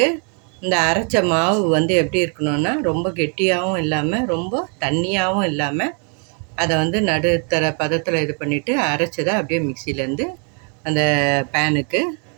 இந்த அரைச்ச மாவு வந்து எப்படி இருக்கணும்னா, ரொம்ப கெட்டியாகவும் இல்லாமல் ரொம்ப தண்ணியாகவும் இல்லாமல் அதை வந்து நடுத்தர பதத்தில் இது பண்ணிவிட்டு அரைச்சதை அப்படியே மிக்சியிலேருந்து அந்த பேனுக்கு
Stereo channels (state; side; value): quieter; left; 38.6 dB